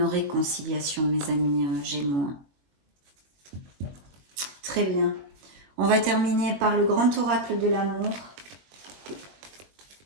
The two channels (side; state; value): left; late; 21 ms